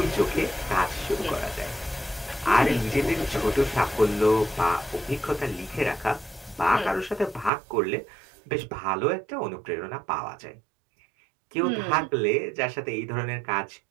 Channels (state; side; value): drops out; left; at 7.5 s